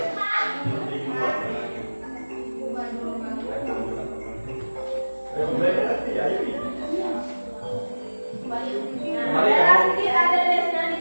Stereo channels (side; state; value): both; inverted; correlation -1.00